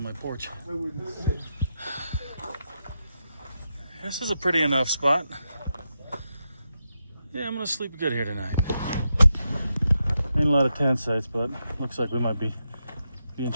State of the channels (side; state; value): both; inverted; correlation -0.86